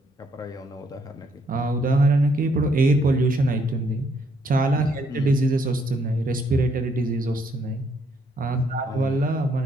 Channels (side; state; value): both; normal; correlation 0.70